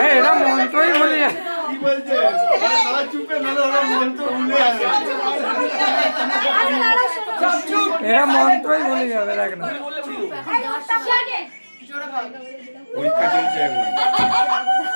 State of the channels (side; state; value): both; inverted; correlation -1.00